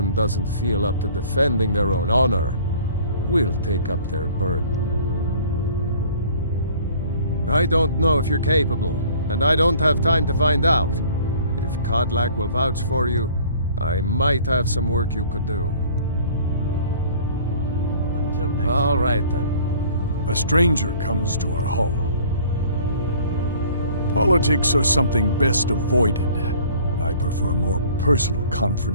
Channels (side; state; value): both; inverted; correlation -0.51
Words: doesn't feel up to defending their own honor, we'll take up their burden. I don't know if you're capable, and I don't have time to find out. If Kodlak will vouch for you, I might have some work you could do. Until next All right, then. A stranger comes to our hall. Politics are something best avoided. I prefer more personal